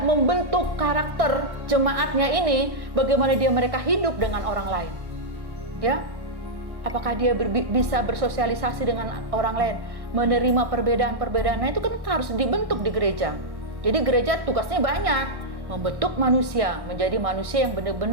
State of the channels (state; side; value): late; left; 1.1 ms